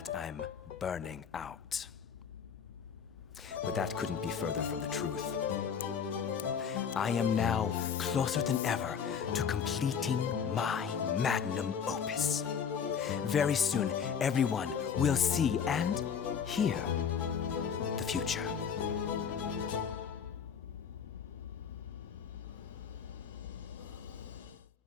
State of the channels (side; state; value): right; quieter; 7.1 dB